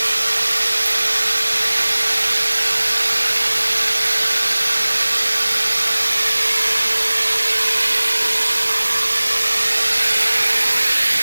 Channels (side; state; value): both; inverted; correlation -1.00